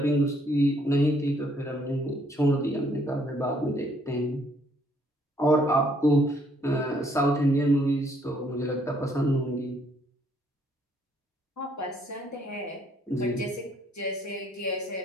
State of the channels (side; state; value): both; normal; correlation 0.67